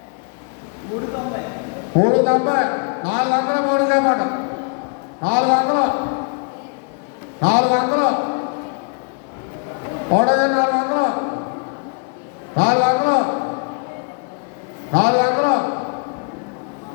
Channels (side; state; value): right; quieter; 39.3 dB